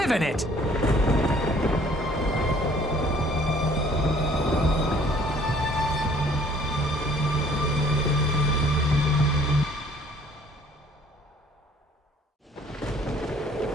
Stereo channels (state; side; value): normal; both; correlation 0.57